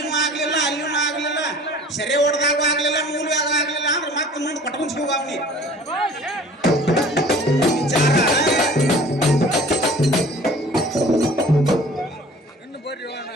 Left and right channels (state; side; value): normal; both; correlation 0.48